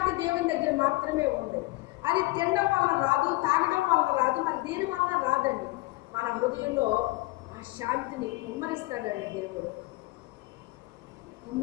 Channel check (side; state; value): right; quieter; 21.6 dB